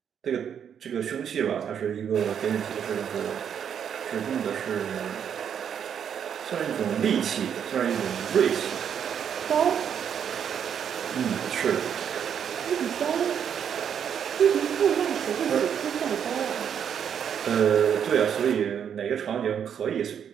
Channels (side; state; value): left; quieter; 8.3 dB